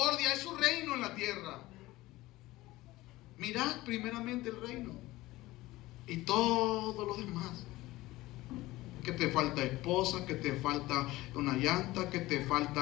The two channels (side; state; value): right; quieter; 18.4 dB